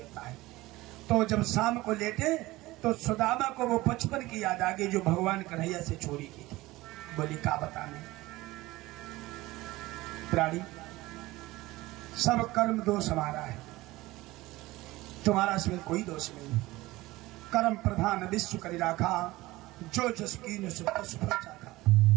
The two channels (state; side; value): quieter; left; 19.1 dB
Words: है। तो जब शाम को लेटे तो सुदामा को वो बचपन की याद आ गई जो भगवान कन्हैया से चोरी की थी। बोली, का बताने प्राणी, सब कर्म दोष हमारा है, तुम्हारा इसमें कोई दोष नहीं। कर्म प्रधान विश्व करी राखा, जो जस कीन सुख सुख चाखा।